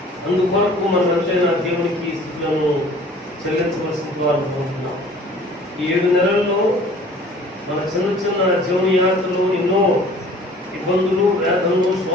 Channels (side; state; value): both; normal; correlation 0.50